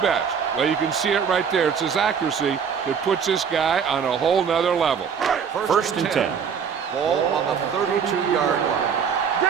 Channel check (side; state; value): left; quieter; 6.9 dB